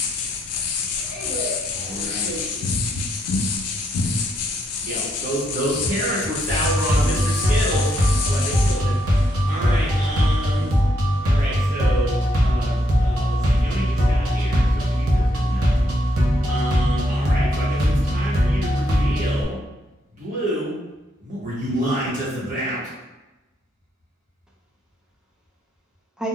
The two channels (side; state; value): both; normal; correlation 0.77